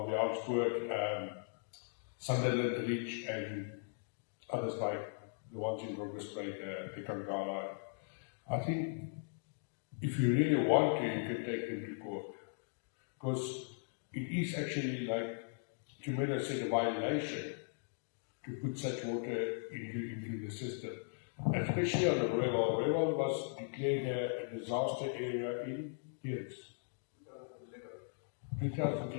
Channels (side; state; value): right; silent; digital silence